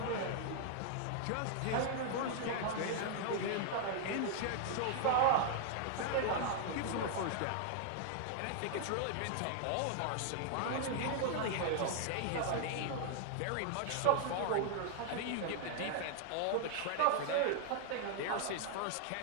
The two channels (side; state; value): both; different; correlation 0.00